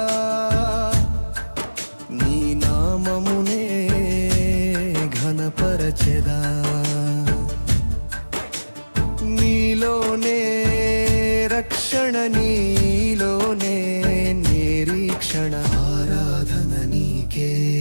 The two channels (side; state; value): both; inverted; correlation -1.00